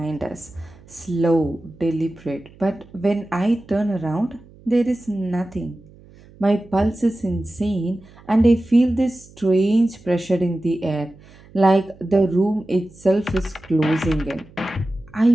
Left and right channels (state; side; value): noise; right; hum, 24 dB below the sound